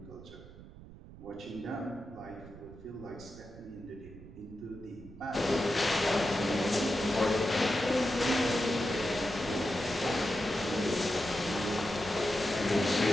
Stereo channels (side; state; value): right; noise; rumble, 17 dB below the sound